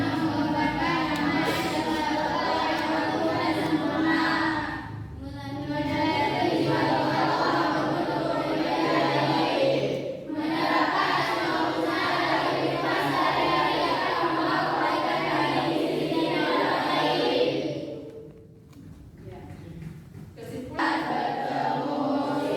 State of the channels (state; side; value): identical; both; correlation 1.00